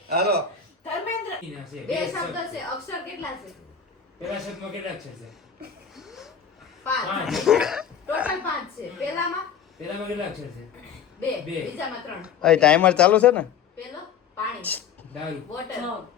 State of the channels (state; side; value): quieter; right; 7.5 dB